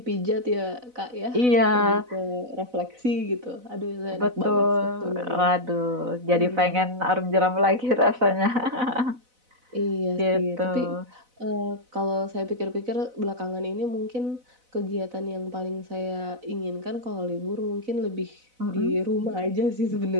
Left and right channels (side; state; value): left; late; 4.0 ms